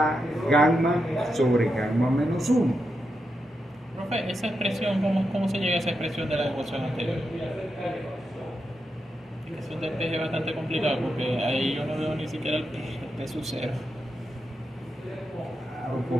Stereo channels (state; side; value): normal; both; correlation 0.86